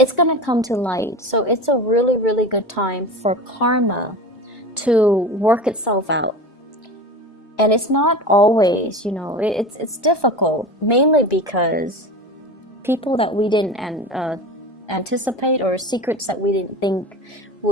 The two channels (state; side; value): normal; both; correlation 0.30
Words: going to come to light. So it's a really, really good time for karma to work itself out. And it's not always, it's difficult, mainly because people that we didn't anticipate, or secrets that we didn't think